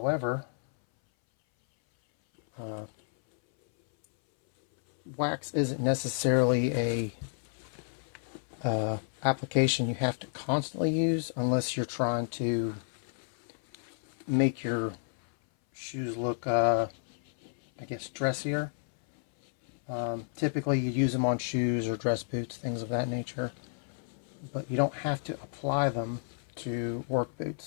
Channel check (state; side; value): silent; right; 57 dB below the other